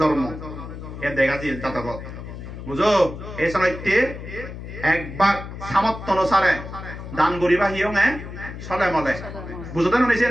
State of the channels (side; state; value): left; noise; hum, 10 dB below the sound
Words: জন্ম এ দেখা যায় জাতকত বুঝো এই সময়তে একবার সামর্থ্য অনুসারে দান করিবা হিয়ং চলে মলে বুঝতে নিছে